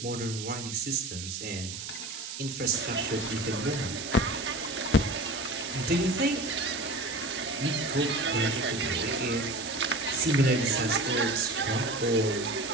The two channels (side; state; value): right; noise; hiss, 8 dB below the sound